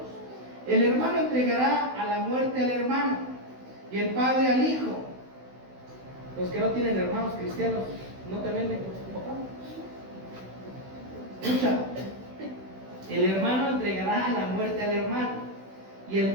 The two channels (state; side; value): late; left; 16 ms